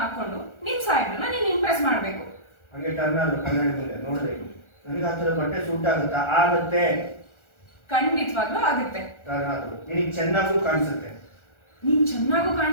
ಹಾಕೊಂಡು ನಿನ್ ಸಾಹೇಬ್ರನ್ನ ನೀನ್ ಇಂಪ್ರೆಸ್ ಮಾಡ್ಬೇಕು. ಹಂಗೆ ಟರ್ನ್ ಆದ್ರು ಕನ್ನಡಿ ಮುಂದೆ ನೋಡ್ರಿ, ನನಗೆ ಆ ತರ ಬಟ್ಟೆ ಸೂಟ್ ಆಗುತ್ತಾ? ಆಗುತ್ತೆ, ಖಂಡಿತವಾಗ್ಲೂ ಆಗುತ್ತೆ. ಟರ್ನ್ ಆದ್ರು ನಿನಗೆ ಚೆನ್ನಾಗೂ ಕಾಣಿಸುತ್ತೆ. ನೀನ್ ಚೆನ್ನಾಗೂ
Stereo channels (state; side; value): late; right; 1.4 ms